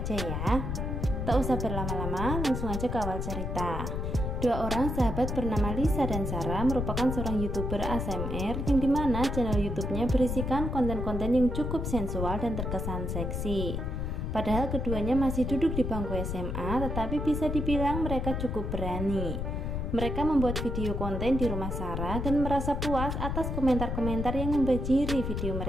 ya. Tak usah berlama-lama, langsung aja ke awal cerita. Dua orang sahabat bernama Lisa dan Sarah merupakan seorang YouTuber ASMR yang dimana channel YouTube-nya berisikan konten-konten yang cukup sensual dan terkesan seksi. Padahal keduanya masih duduk di bangku SMA, tetapi bisa dibilang mereka cukup berani. Mereka membuat video konten di rumah Sarah dan merasa puas atas komentar-komentar yang membajiri video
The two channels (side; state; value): left; noise; rumble, 2 dB below the sound